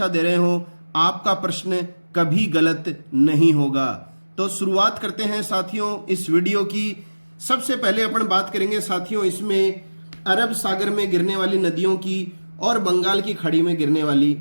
दे रहे हो, आपका प्रश्न कभी गलत नहीं होगा। तो शुरुआत करते हैं साथियों इस वीडियो की। सबसे पहले अपन बात करेंगे साथियों इसमें अरब सागर में गिरने वाली नदियों की और बंगाल की खाड़ी में गिरने वाली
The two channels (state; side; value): inverted; both; correlation -1.00